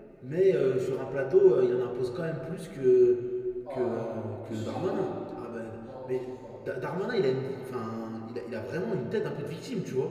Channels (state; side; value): identical; both; correlation 1.00